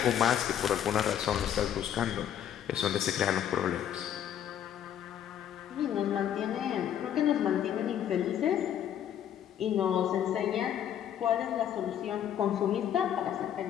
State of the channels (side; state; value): right; quieter; 10.0 dB